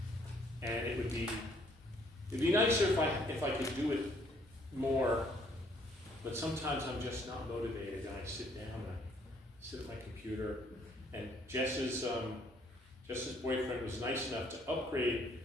And it'd be nicer if I could do it more, but sometimes I'm just not motivated, and I sit down, and I sit at my computer, and Jess's boyfriend was nice enough to upgrade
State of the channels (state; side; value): normal; both; correlation 0.65